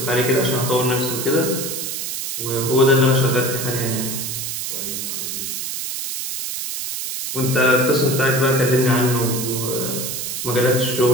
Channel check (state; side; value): noise; right; hiss, 4 dB below the sound